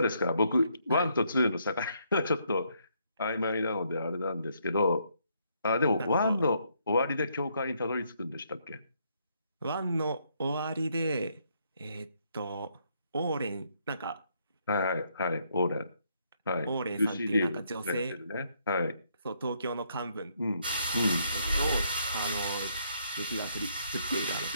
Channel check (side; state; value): both; inverted; correlation -0.73